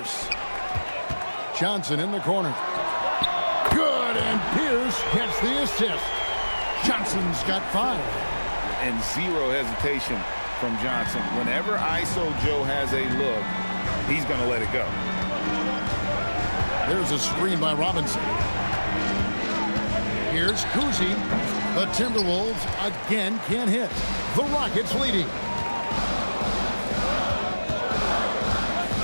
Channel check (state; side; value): inverted; both; correlation -1.00